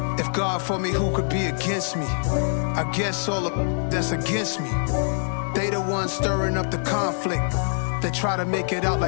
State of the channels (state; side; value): silent; right; digital silence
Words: If God for me, who could be against me? I guess all of that's against me. They the ones stirring up the conflict. They try to make it out